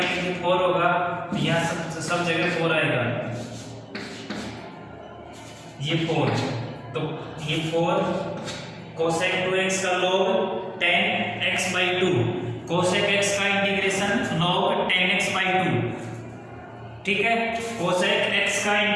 तो 4 होगा, तो यहां सब जगह 4 आएगा, ये 4, तो ये 4 cosec 2x का log 10x/2, cosec x का इंटीग्रेशन log 10x/2, ठीक है। cosec x का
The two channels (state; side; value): identical; both; correlation 1.00